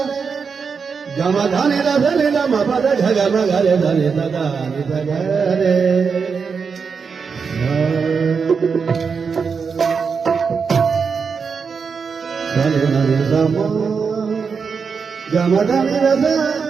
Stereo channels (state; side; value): quieter; left; 5.7 dB